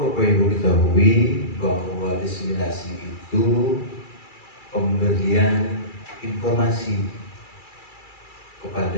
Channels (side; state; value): right; late; 2.3 ms